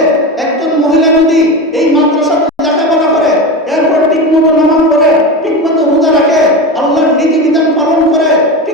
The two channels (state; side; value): normal; both; correlation 0.23